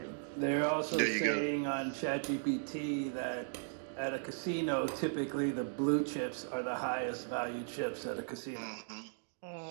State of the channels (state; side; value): silent; left; digital silence